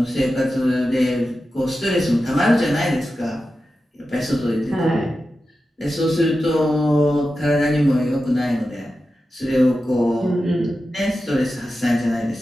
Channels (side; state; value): both; normal; correlation 0.92